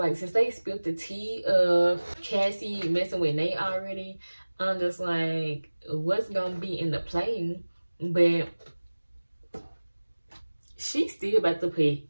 since they spilled the tea of Cassie messing with Nate already, I'm just like, what's gonna be in the play? But she's still about to put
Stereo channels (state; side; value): inverted; both; correlation -1.00